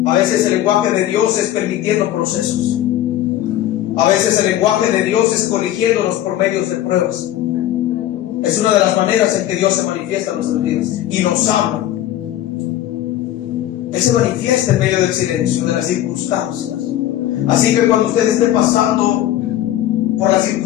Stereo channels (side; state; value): right; quieter; 13.0 dB